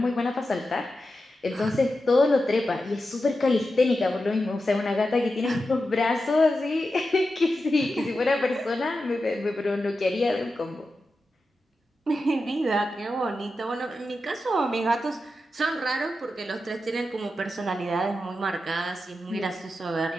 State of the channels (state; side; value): normal; both; correlation 0.90